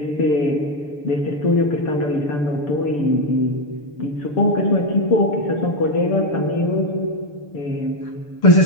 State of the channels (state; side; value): late; right; 6.8 ms